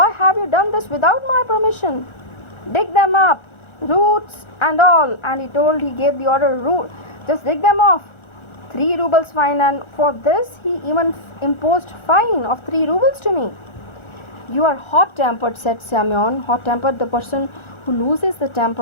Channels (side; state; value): right; late; 1.4 ms